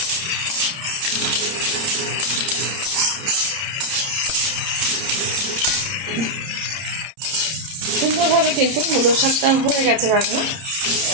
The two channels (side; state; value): left; late; 30 ms